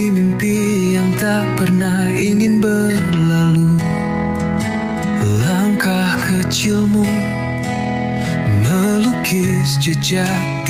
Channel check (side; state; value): both; identical; correlation 1.00